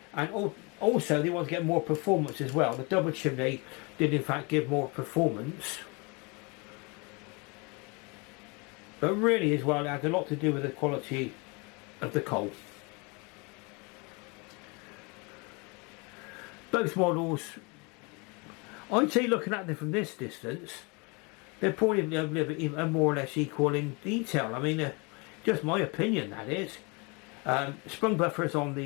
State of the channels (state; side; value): quieter; right; 29.8 dB